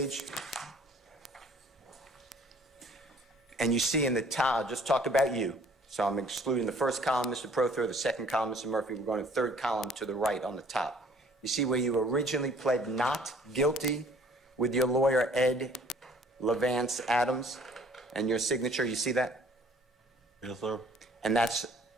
And you see in the top, I'll just talk about you. So I'm excluding the first column, Mr. Prothero, the second column, Mr. Murphy. We're going to the third column to the right on the top. You see where you originally pled not guilty with your lawyer, Ed Levance Adams, and your signature, you see that? Yes, sir. And that's,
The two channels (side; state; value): both; normal; correlation 0.56